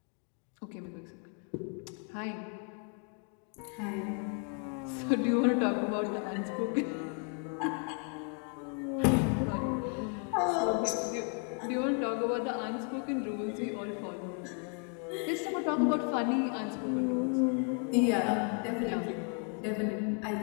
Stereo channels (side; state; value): right; quieter; 40.0 dB